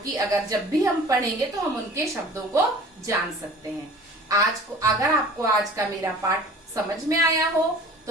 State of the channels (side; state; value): both; normal; correlation 0.44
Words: जब भी हम पढ़ेंगे तो हम उनके शब्दों को जान सकते हैं। अगर आपको आज का मेरा पाठ समझ में आया हो